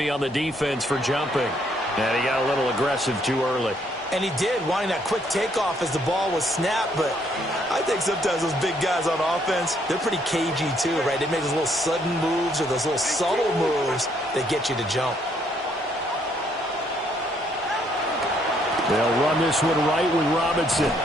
on the defense for jumping. And he got a little aggressive too early. And he did, wanting that quick takeoff as the ball was snapped. But I think sometimes those big guys on offense, they're pretty cagey too, right? They make those little sudden moves or those little subtle moves that get you to jump. They'll run this one right with Robinson.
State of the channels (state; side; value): normal; both; correlation 0.69